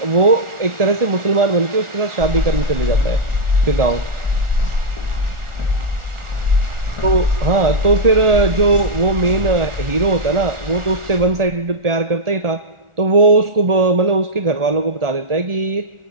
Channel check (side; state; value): left; late; 1.4 ms